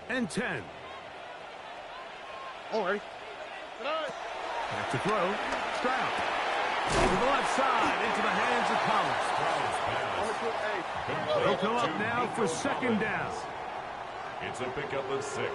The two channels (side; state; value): both; identical; correlation 1.00